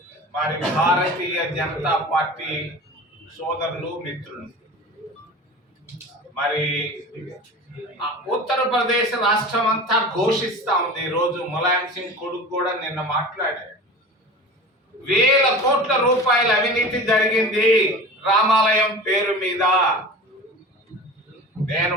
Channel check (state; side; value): normal; both; correlation 0.35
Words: మరి భారతీయ జనతా పార్టీ సోదరులు, మిత్రులు. మరి ఉత్తరప్రదేశ్ రాష్ట్రం అంతా ఘోషిస్తా ఉంది. ఈరోజు ములాయం సింగ్ కొడుకు కూడా నిన్న మాట్లాడారు. వేల కోట్ల రూపాయల అవినీతి జరిగింది రామాలయం పేరు మీద. నేను